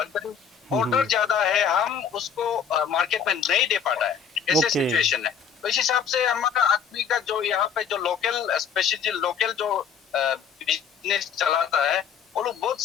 ऑर्डर ज्यादा है हम उसको मार्केट में नहीं दे पाता है ऐसे सिचुएशन है तो इस हिसाब से हमारा आदमी का जो यहाँ पे जो लोकल स्पेशली लोकल जो बिजनेस चलाता है वो लोग बहुत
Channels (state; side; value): quieter; right; 7.2 dB